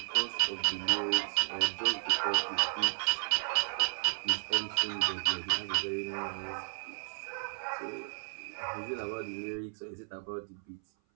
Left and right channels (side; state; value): left; silent; 56 dB below the other